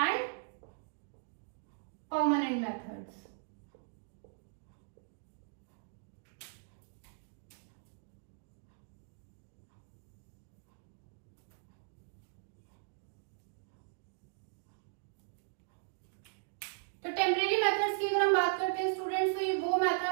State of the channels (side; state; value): left; silent; digital silence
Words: permanent methods. तो टेम्परेरी मेथड्स की अगर हम बात करते हैं स्टूडेंट्स, तो ये वो